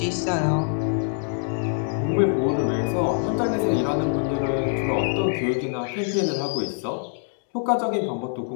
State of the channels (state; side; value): silent; right; 62 dB below the other